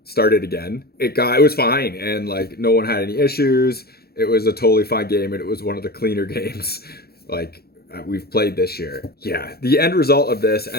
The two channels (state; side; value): late; right; 0.46 ms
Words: started again, it was fine, and no one had any issues. It was a totally fine game, and it was one of the cleaner games we've played this year. Yeah, the end result of this